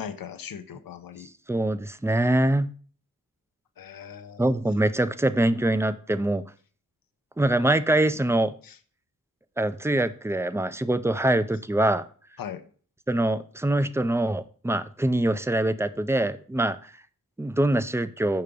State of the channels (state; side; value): normal; both; correlation 0.83